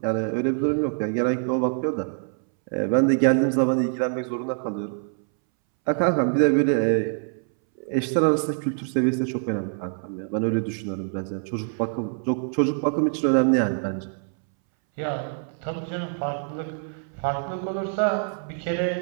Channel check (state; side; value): silent; left; 62 dB below the other